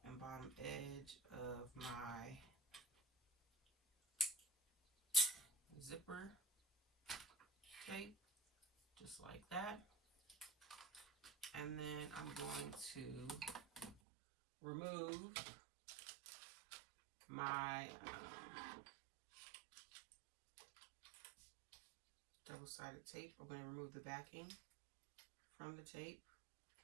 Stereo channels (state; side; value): drops out; left; at 14.0 s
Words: and bottom edge of my zipper tape, just like that. And then I'm going to remove my double-sided tape. I'm going to remove the backing from the tape.